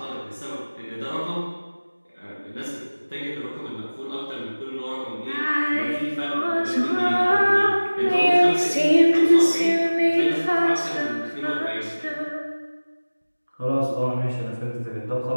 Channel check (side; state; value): both; inverted; correlation -1.00